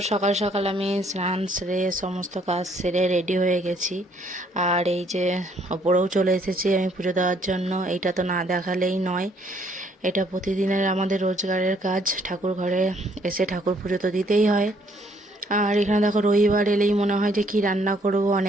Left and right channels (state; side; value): normal; both; correlation 0.66